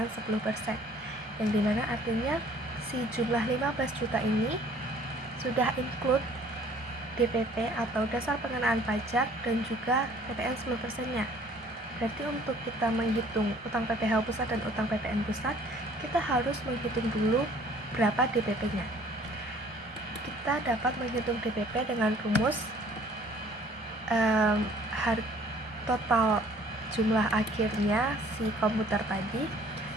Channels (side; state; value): both; normal; correlation 0.55